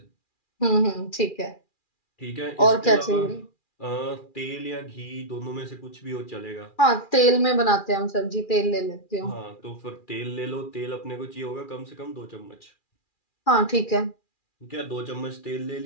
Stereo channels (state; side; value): late; right; 2.4 ms